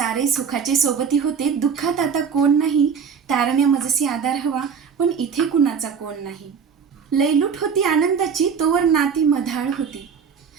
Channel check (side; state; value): left; quieter; 6.5 dB